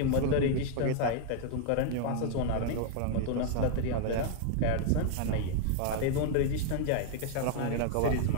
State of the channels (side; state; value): both; different; correlation 0.00